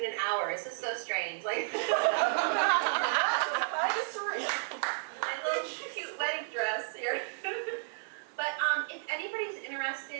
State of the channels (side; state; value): left; silent; digital silence